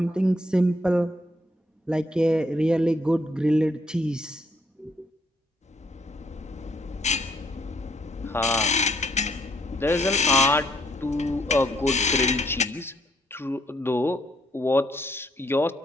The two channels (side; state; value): both; normal; correlation 0.70